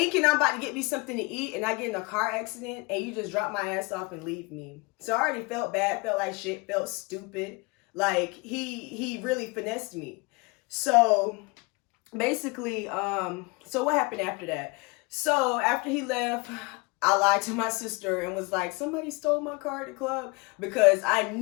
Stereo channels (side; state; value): right; quieter; 27.9 dB